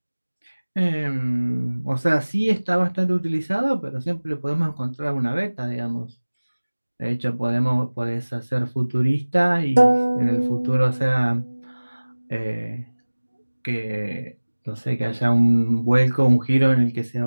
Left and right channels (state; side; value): inverted; both; correlation -1.00